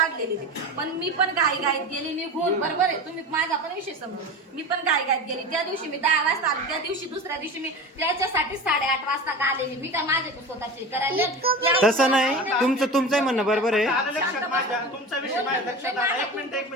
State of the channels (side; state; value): both; normal; correlation 0.30